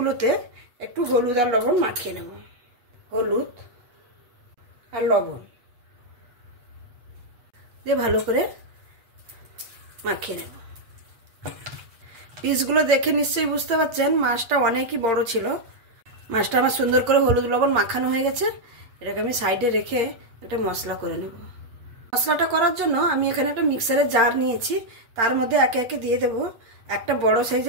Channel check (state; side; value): late; left; 8.2 ms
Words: একটু হলুদ আর লবণ মাখিয়ে নেব। হলুদ আর লবণ দিয়ে ভালো করে মাখিয়ে নেব। পিসগুলো দেখে নিশ্চয়ই বুঝতে পারছেন মাছটা অনেকই বড় ছিল। মাছটা আমার সুন্দর করে হলুদ লবণ মাখানো হয়ে গেছে। এটাকে আমি সাইডে রেখে একটা মশলা করে নেব। মশলাটা করার জন্য আমি এখানে একটা মিক্সারের জার নিয়েছি। তার মধ্যে একে একে দিয়ে দেব একটা বড়